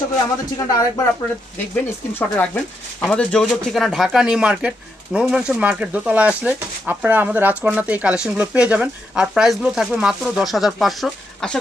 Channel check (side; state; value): both; normal; correlation 0.82